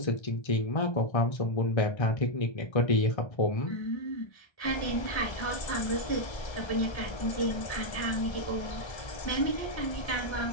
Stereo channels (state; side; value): late; right; 1.3 ms